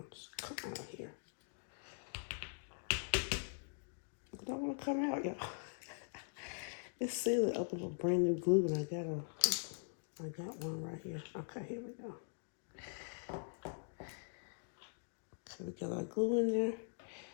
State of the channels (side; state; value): right; silent; digital silence